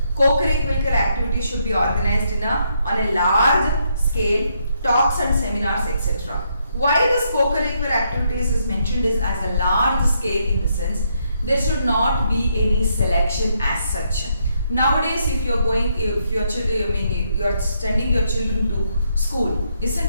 Co-curricular activities should be organized on a large scale, talks and seminars, etc. Why this co-curricular activities is mentioned is as a large scale in the sense there should not be any selection as such. Nowadays, if you are sending your children to school,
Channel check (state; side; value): inverted; both; correlation -0.76